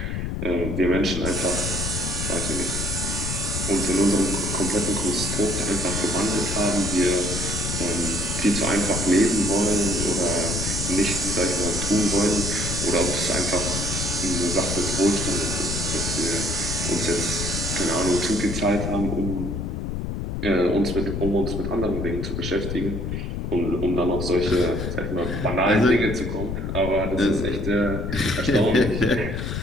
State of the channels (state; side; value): noise; left; rumble, 3 dB below the sound